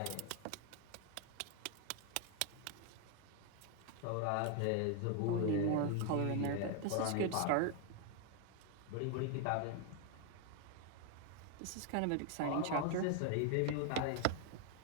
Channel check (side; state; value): both; different; correlation 0.00